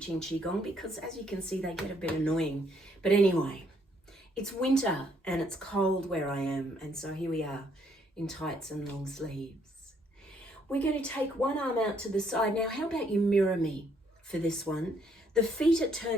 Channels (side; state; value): both; normal; correlation 0.69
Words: Qigong because, as you can see, they get a bit annoying. But anyway, it's winter and it's cold where I am, and so here we are in tights and long sleeves. We're going to take one arm out to the side. Now, how about you mirror me for this one? The feet are